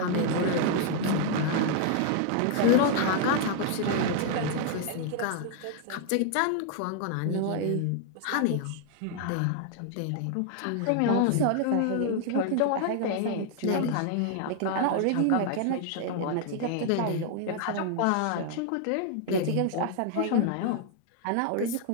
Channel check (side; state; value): both; different; correlation 0.00